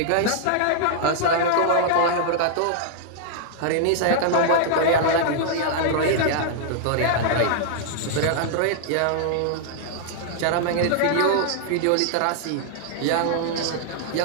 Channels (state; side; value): different; both; correlation -0.01